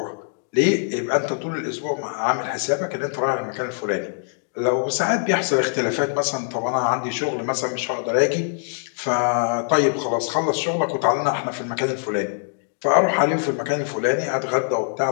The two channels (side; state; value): right; silent; 63 dB below the other